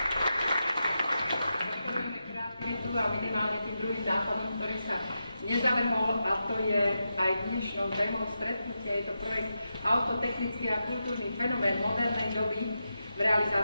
a minimálne tým druhým nápadom, ktorý sa nezavrhol, a to je aj dnešnou témou stretnutia. Je to projekt Autotechnický a kultúrny fenomén modernej doby v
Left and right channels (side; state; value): both; inverted; correlation -0.88